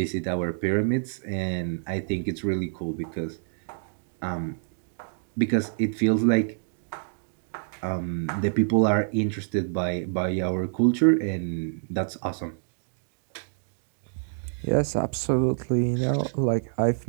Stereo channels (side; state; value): left; silent; digital silence